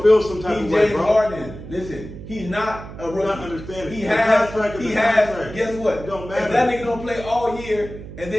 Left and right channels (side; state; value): right; noise; hum, 13 dB below the sound